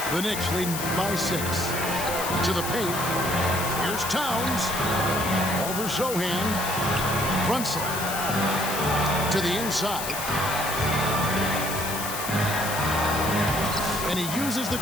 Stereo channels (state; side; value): noise; left; hiss, 6 dB below the sound